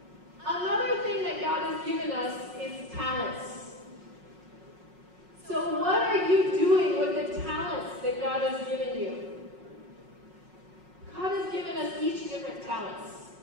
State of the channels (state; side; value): late; left; 5.5 ms